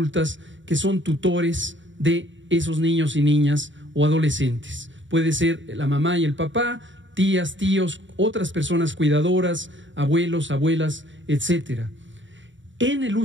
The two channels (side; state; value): left; late; 0.55 ms